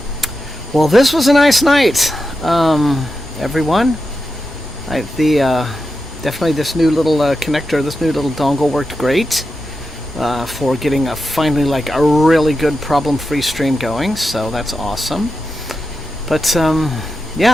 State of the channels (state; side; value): normal; both; correlation 0.89